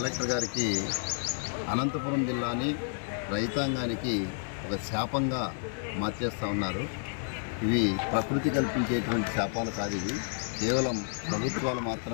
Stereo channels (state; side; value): silent; right; digital silence